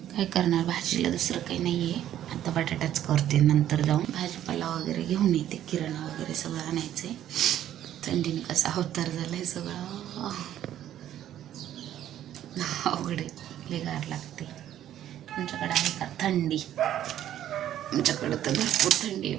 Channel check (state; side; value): quieter; left; 11.6 dB